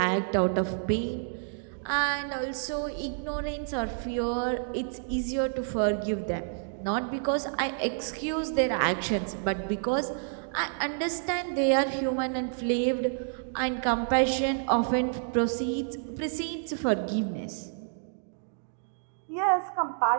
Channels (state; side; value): silent; left; digital silence